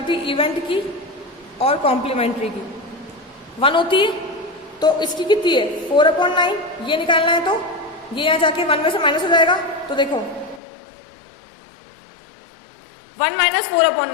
इवेंट की और कॉम्प्लीमेंट्री की 1 होती है। तो इसकी कितनी है? 4/9। ये निकालना है तो ये यहाँ जाके 1 में से माइनस हो जाएगा। तो देखो 1 -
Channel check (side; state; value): right; drops out; at 10.6 s